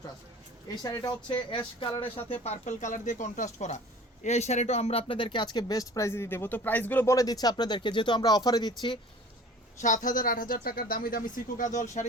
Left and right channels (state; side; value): normal; both; correlation 0.45